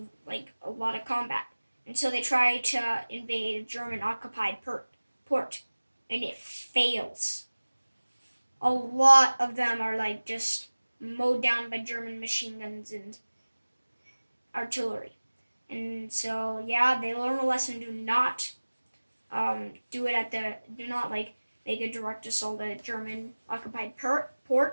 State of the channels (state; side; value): inverted; both; correlation -1.00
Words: like a lot of combat, and so they try to invade a German occupied port, and it fails. A lot of them are like just mowed down by German machine guns and artillery. And so yeah, they learn a lesson: do not do not like make a direct assault at a German occupied